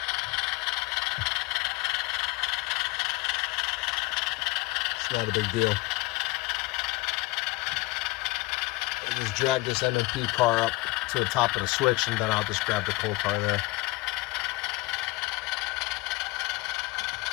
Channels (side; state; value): right; quieter; 22.2 dB